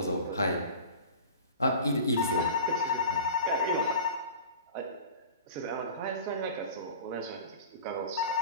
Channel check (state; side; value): inverted; both; correlation -0.38